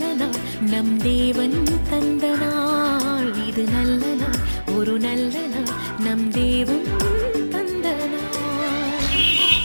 நாள், நம் தேவன் தந்த நாள். இது நல்ல நாள், ஒரு நல்ல நாள், நம் தேவன்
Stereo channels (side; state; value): both; inverted; correlation -1.00